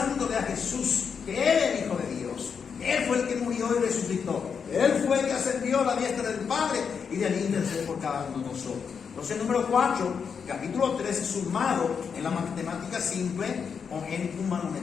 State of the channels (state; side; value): quieter; right; 6.4 dB